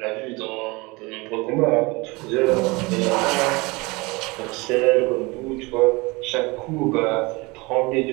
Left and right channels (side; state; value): left; quieter; 25.0 dB